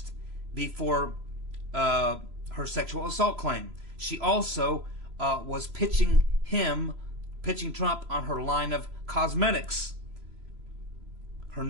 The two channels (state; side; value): late; left; 3.0 ms